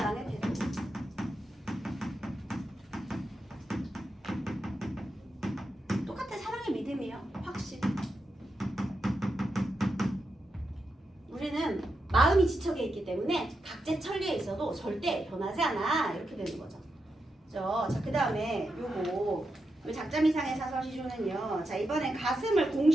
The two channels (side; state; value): both; normal; correlation 0.87